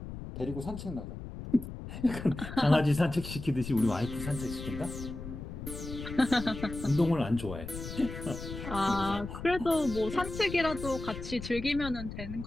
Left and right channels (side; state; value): left; noise; rumble, 9 dB below the sound